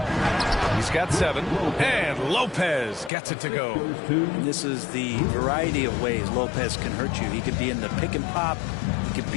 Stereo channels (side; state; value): right; drops out; at 3.1 s